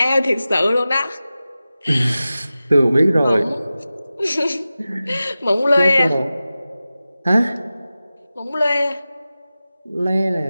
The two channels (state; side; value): inverted; both; correlation -0.95